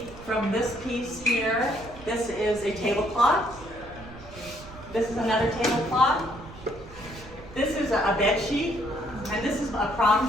from this piece here, this is a tablecloth. This is another tablecloth. This is a bed sheet, and this is a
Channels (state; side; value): noise; right; rumble, 17 dB below the sound